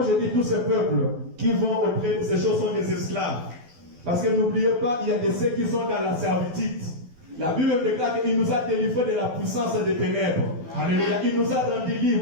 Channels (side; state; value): left; late; 12 ms